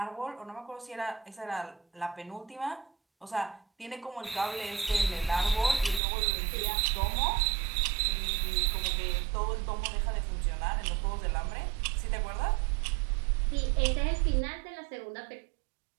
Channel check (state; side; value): drops out; left; at 6.0 s